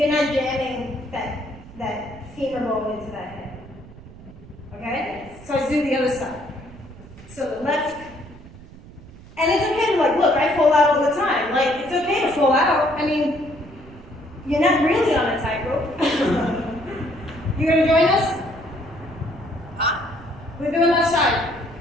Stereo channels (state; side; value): noise; right; rumble, 19 dB below the sound